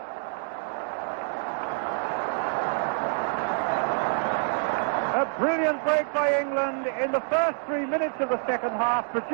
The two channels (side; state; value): left; silent; digital silence